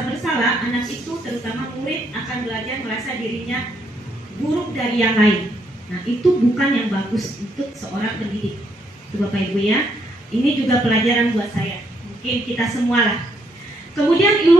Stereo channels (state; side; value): normal; both; correlation 0.74